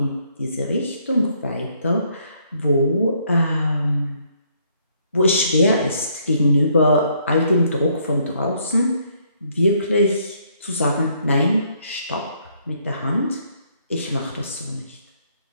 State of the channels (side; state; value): both; inverted; correlation -0.68